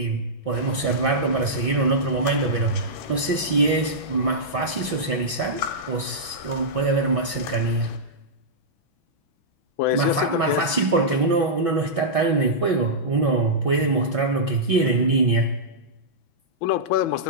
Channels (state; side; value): late; right; 6.1 ms